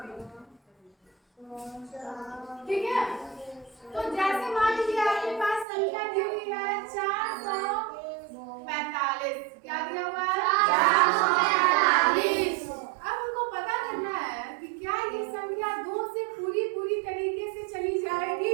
ठीक है। तो जैसे मान लीजिए आपके पास संख्या दी हुई है 445। क्या दिया हुआ है? 445। अब हमको पता करना है कि क्या ये संख्या 2 से पूरी तरीके से चली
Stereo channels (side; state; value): left; drops out; at 5.7 s